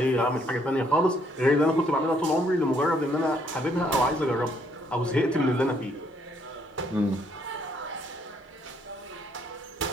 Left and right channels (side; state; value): both; normal; correlation 0.68